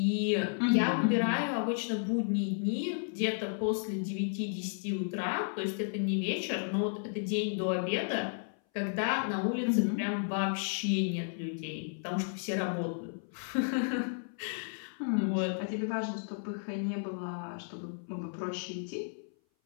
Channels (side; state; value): right; silent; 56 dB below the other